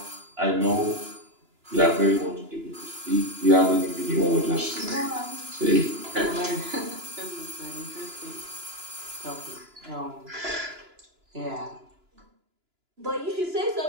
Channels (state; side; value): late; left; 2.9 ms